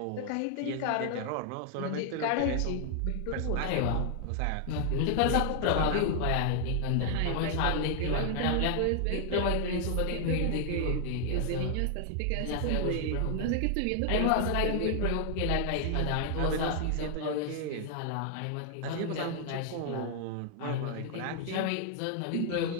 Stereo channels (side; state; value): both; different; correlation 0.00